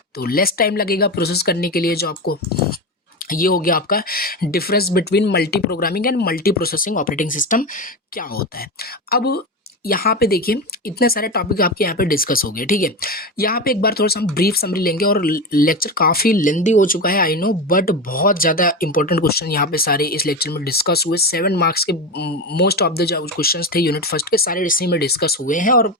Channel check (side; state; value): both; normal; correlation 0.19